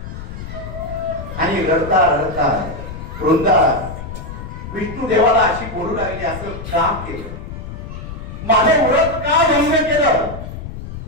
आणि रडता रडता वृंदा विष्णू देवाला अशी बोलू लागली, असं का केलं, माझे व्रत का भंग केलं,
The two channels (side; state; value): left; noise; rumble, 10 dB below the sound